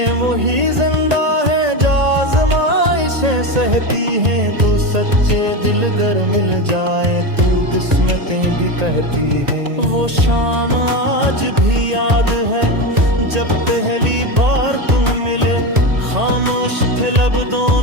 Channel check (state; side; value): late; left; 1.8 ms